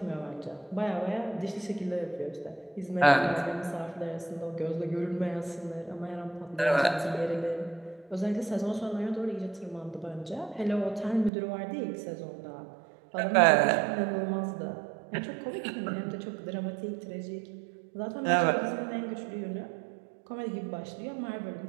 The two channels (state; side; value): drops out; left; at 11.3 s